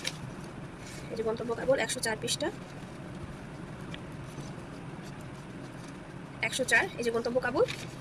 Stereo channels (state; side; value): identical; both; correlation 1.00